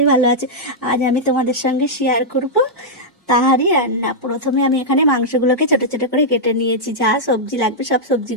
ভালো আছে। আজ আমি তোমাদের সঙ্গে শেয়ার করব তাহারি রান্না। প্রথমে আমি এখানে মাংসগুলোকে ছোট ছোট করে কেটে নিয়েছি, যা সবজি লাগবে সব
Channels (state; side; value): normal; both; correlation -0.07